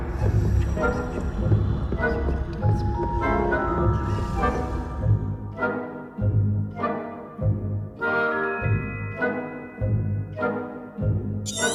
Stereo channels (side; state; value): both; identical; correlation 1.00